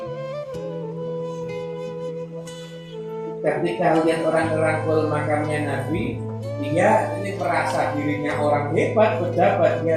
Ketika lihat orang ngerangkul makamnya Nabi, dia ini merasa dirinya orang hebat, pejabat,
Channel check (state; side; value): identical; both; correlation 1.00